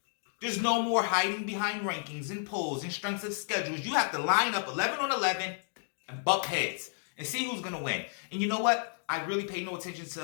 There's no more hiding behind rankings and polls and strengths of schedules. You have to line up 11 on 11 and buck heads and see who's going to win. And you know what? I really pay no attention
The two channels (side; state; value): right; silent; digital silence